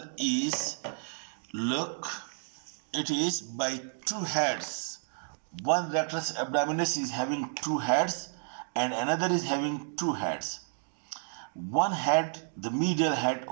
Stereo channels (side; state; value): left; silent; 57 dB below the other